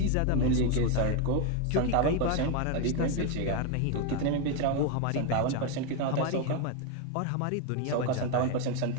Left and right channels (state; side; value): different; both; correlation 0.01